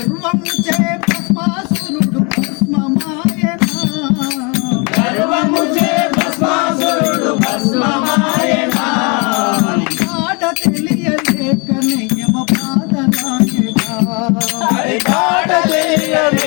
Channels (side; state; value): right; quieter; 31.7 dB